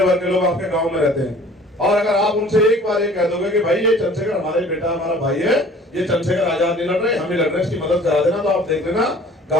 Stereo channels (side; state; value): both; normal; correlation 0.50